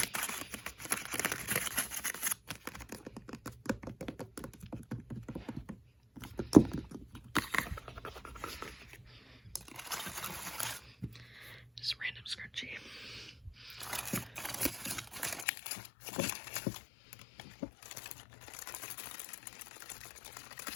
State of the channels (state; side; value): drops out; right; at 15.5 s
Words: Just random scrunchie.